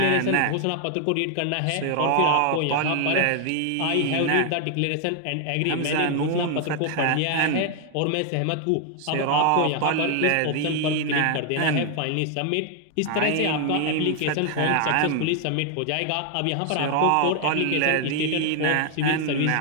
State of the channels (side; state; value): both; different; correlation 0.00